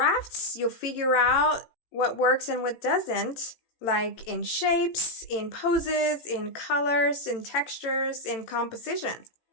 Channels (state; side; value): late; right; 18 ms